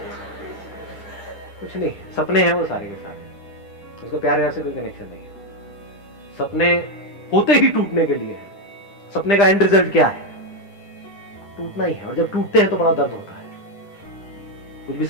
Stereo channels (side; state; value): right; late; 10 ms